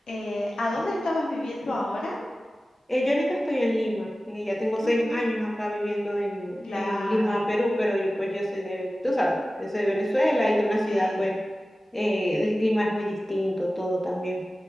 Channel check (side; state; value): both; normal; correlation 0.96